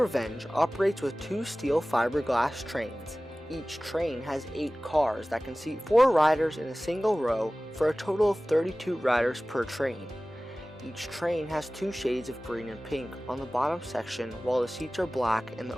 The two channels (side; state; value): both; normal; correlation 0.98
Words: operates with 2 steel fiberglass trains. Each train has 8 cars that can seat 4 riders in a single row for a total of 32 riders per train. Each train has 2 shades of green and pink on the bottom section, while the seats are black and the